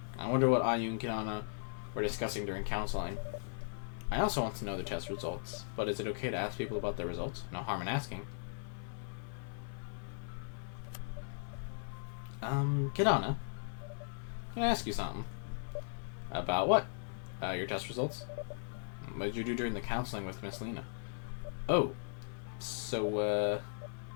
wonder what IU and Kinana were discussing during counseling. I also want to know the test results, but is it okay to ask people about their results? No harm in asking. Kinana, can I ask you something? About what? Your test results? What did you do during the counseling with Miss Lena? Oh, so,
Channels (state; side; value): silent; right; 53 dB below the other